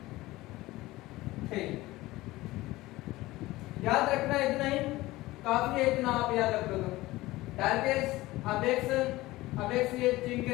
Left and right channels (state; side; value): quieter; right; 18.6 dB